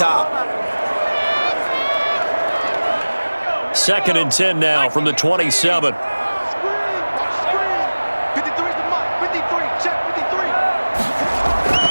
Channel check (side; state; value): both; inverted; correlation -1.00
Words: 2nd and 10 now from the 27.